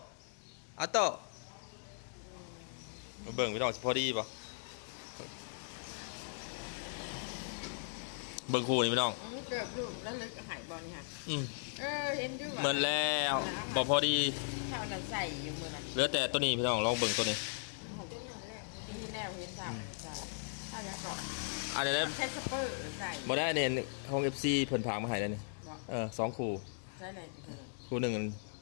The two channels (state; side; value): silent; right; digital silence